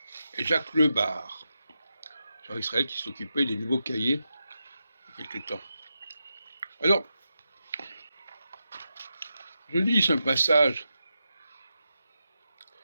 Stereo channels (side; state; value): both; inverted; correlation -0.88